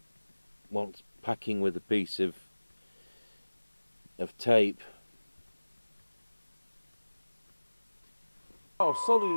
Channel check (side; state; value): both; inverted; correlation -1.00